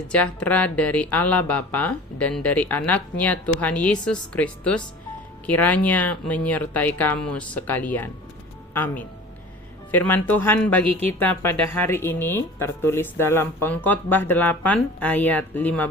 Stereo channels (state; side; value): normal; both; correlation 0.41